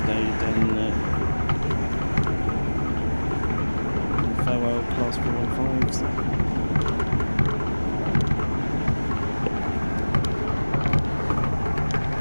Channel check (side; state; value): both; inverted; correlation -1.00